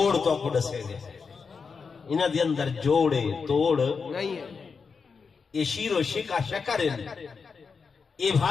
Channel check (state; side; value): quieter; right; 5.3 dB